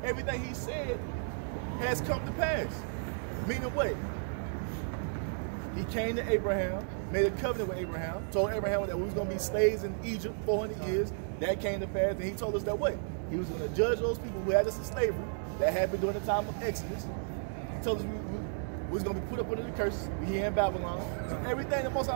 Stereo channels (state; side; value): silent; left; digital silence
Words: everything he said has come to pass. Meaning what? He came to Abraham, made a covenant with Abraham, told Abraham that we was going to be slaves in Egypt 400 years. That came to pass, and he told us that what? He was going to judge those people who had us in slavery. That happened during the time of Exodus. He told us we was going to be put up under the curse. We here in Babylon. So everything the Most